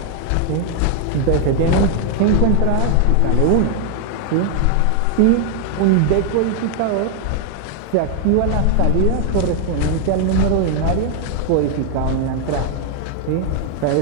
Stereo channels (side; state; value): both; different; correlation 0.00